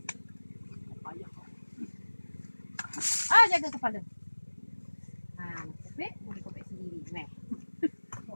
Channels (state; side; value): inverted; both; correlation -1.00